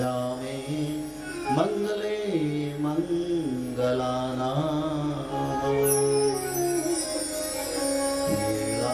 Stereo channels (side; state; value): both; identical; correlation 1.00